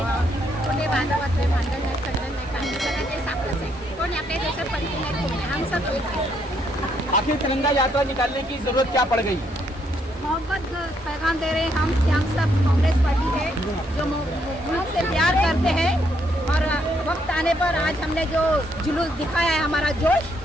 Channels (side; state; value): both; normal; correlation 0.73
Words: कोणी बांधवातले भांडण नाही, खंडन नाही, काही सगळं ते साखरच आहे, कोणी आपल्या देशात पलटी नाही, कोणी हम सब एक है। आखिर तिरंगा यात्रा निकालने की जरूरत क्या पड़ गई। मोहब्बत पैगाम दे रहे हैं। हम सब कांग्रेस पार्टी है जो मुल्क से प्यार करते हैं, और वक्त आने पर आज हमने जो जुलूस दिखाया है, हमारा जोश,